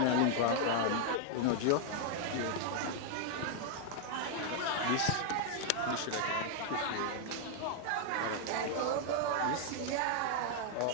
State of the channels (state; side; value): different; both; correlation 0.00